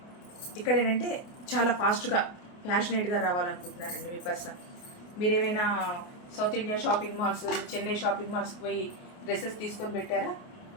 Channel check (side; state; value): right; late; 29 ms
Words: ఇక్కడ ఏంటంటే చాలా ఫాస్ట్గా ప్యాషనేట్గా రావాలనుకుంటున్నారండి మీ పర్సన్. మీరేమైనా south India shopping malls, Chennai shopping మాల్స్కి పోయి డ్రెస్సెస్ తీసుకొని పెట్టారా?